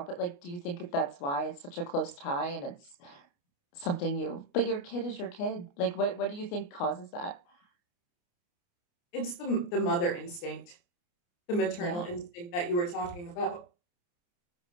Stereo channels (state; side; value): late; right; 29 ms